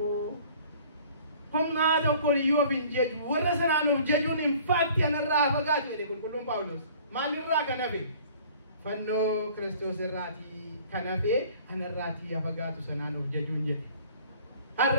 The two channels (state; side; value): inverted; both; correlation -0.51